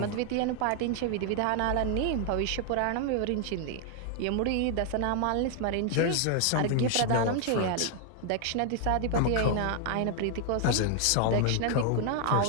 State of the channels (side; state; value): both; different; correlation 0.00